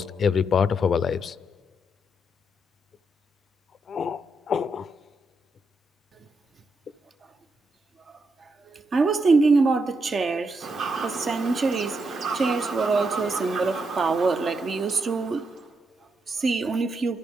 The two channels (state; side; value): normal; both; correlation 0.81